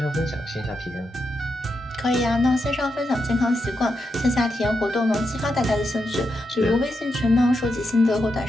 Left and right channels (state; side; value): normal; both; correlation 0.85